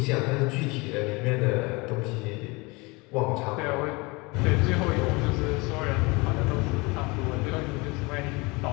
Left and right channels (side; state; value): right; quieter; 25.9 dB